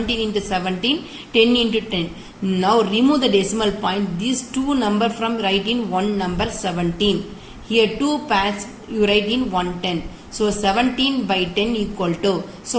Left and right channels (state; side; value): identical; both; correlation 1.00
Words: into 17, 10 into 10. Now remove the decimal point. These 2 number from write in 1 number 17. Here 2 pairs you write in 110. So 17 by 10 equal to,